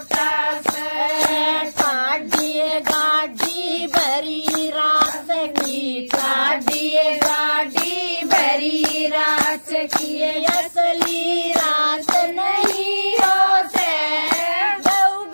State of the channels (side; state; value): both; inverted; correlation -1.00